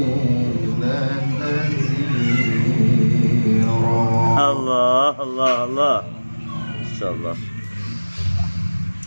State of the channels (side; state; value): both; inverted; correlation -1.00